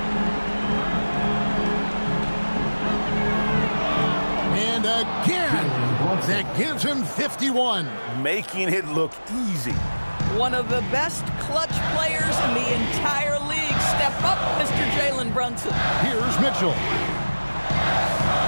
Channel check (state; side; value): inverted; both; correlation -1.00